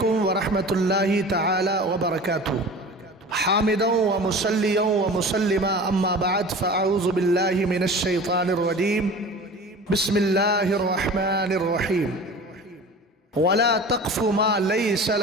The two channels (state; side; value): normal; both; correlation 0.38